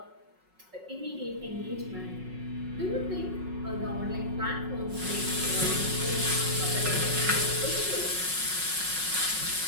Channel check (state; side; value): late; left; 5.4 ms